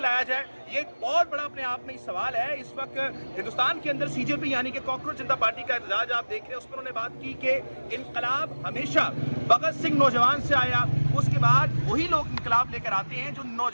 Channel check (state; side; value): inverted; both; correlation -1.00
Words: जाए? ये एक बहुत बड़ा अपने आप में सवाल है। इस वक्त हिंदुस्तान के अंदर CJP यानी कि कॉकरोच जनता पार्टी का एहतजाज आप देख रहे हैं, उस पर उन्होंने बात की कि इनकलाब हमेशा भगत सिंह नौजवान से आया, اس کے بعد وہی لوگ انقلاب لے کر آتے ہیں جو